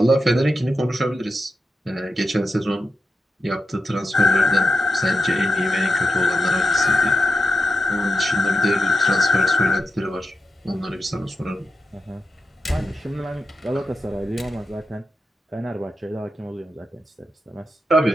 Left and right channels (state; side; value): normal; both; correlation 0.87